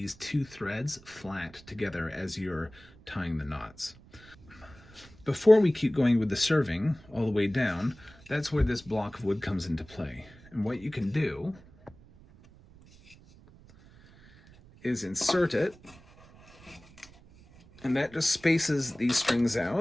two threads flat together as you're tying the knots. Before we keep going with the serving all the way down, that's where this block of wood comes into play. And what you can do is insert it, and that just spaces these strings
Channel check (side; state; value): right; noise; rumble, 24 dB below the sound